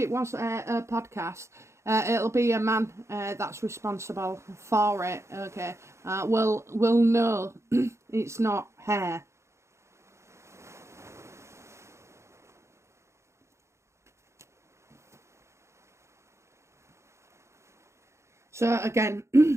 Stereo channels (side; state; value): left; late; 0.14 ms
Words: was a podcast, it'll be a man that's responsible for it, okay? Will know it's not hair. So again,